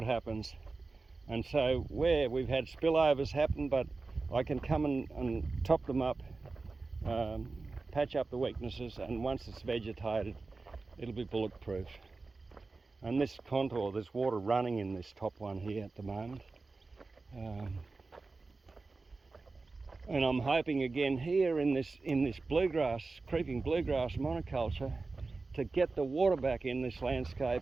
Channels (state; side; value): quieter; left; 3.8 dB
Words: happens. And so where we've had spillovers happen, but I can come and top them up, patch up the weaknesses, and once it's vegetated, it'll be bulletproof. And this contour, there's water running in this top one here at the moment. And I'm hoping again here in this bluegrass, creeping bluegrass monoculture, to get the water back in this landscape,